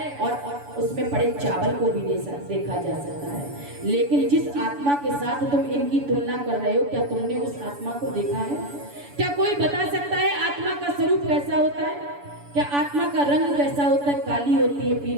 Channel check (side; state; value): left; late; 7.0 ms